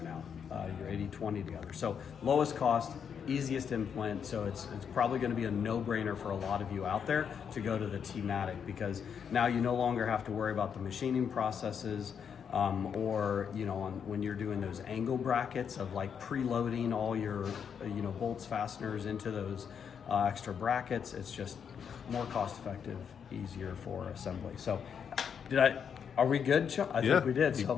now, your 80/20 together. So lowest cost, easiest implant. So it's probably going to be a no-brainer for a lot of you out there to go to the T-Matic, because now you no longer have to worry about the machining processes. Or when you're doing those angle brackets of like preloading all your bolts, fasteners into those extra brackets, it's just more cost effective, easier for assembly. So are we good, Sean? I think we did.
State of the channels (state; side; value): quieter; right; 7.3 dB